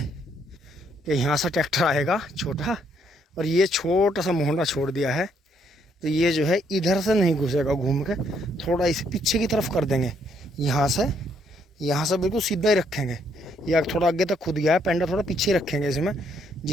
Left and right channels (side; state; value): both; normal; correlation 0.71